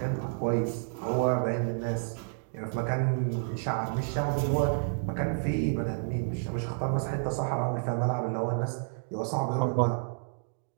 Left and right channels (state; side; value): silent; left; digital silence